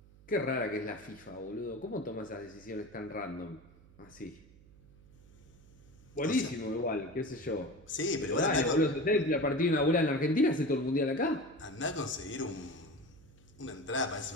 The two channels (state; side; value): noise; right; hum, 24 dB below the sound